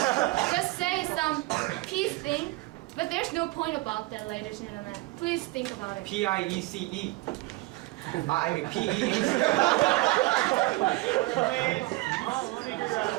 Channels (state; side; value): quieter; left; 21.5 dB